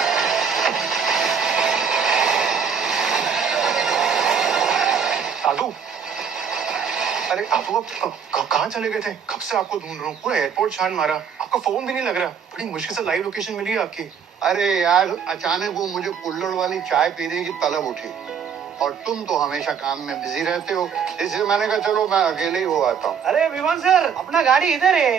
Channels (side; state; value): left; quieter; 7.0 dB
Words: दादू, अरे दादू आप कहाँ चले गए थे? कब से आपको ढूंढ रहा हूँ, पूरा एयरपोर्ट छान मारा, आपका फोन भी नहीं लग रहा। बड़ी मुश्किल से लाइव लोकेशन मिली है आपकी। अरे यार, अचानक वो मुझे कुल्हड़ वाली चाय पीने की तलब उठी और तुम तो हमेशा काम में बिजी रहते हो, इसलिए मैंने कहा चलो मैं अकेले ही हो आता हूँ। अरे विमान सर, अपना गाड़ी इधर